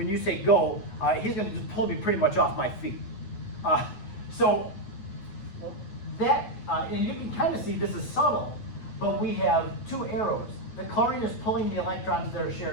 you say go, he's going to just pull me pretty much off my feet. So that, and you can kind of see this is subtle, but we have two arrows. The chlorine is pulling the electrons that are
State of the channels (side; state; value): right; late; 9.3 ms